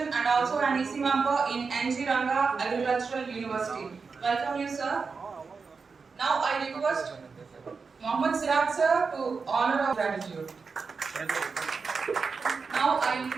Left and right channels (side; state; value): left; quieter; 4.9 dB